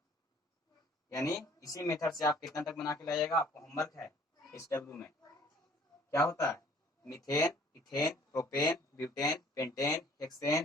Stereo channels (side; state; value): both; normal; correlation 0.55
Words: यानी इसी मेथड से आप कितना तक बना के लाइएगा, आपको होमवर्क है इस डब्ल्यू में क्या होता है, methane, ethane, propane, butane, pentane,